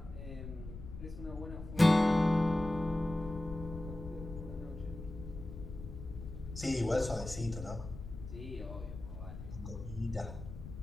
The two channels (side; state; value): left; noise; rumble, 10 dB below the sound